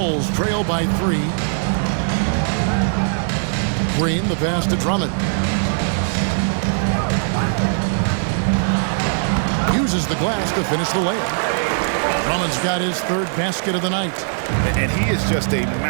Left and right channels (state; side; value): silent; left; digital silence